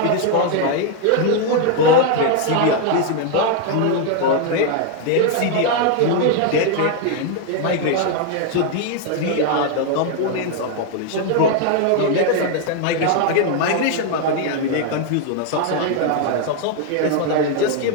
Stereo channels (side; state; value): both; different; correlation 0.00